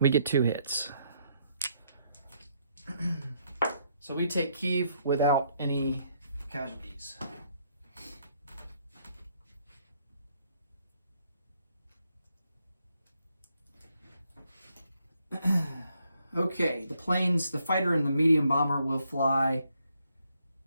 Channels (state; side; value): inverted; both; correlation -0.73